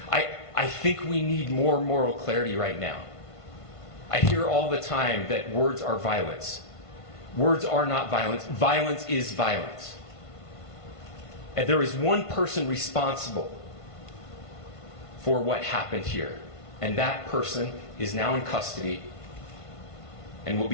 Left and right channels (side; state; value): right; late; 1.5 ms